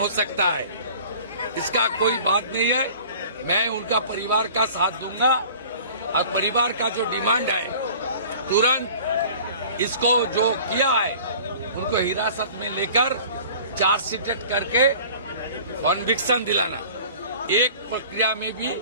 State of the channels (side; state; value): both; inverted; correlation -0.45